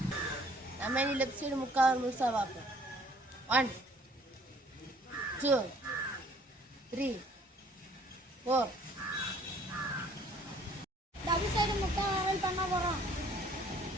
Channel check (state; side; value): normal; both; correlation 0.58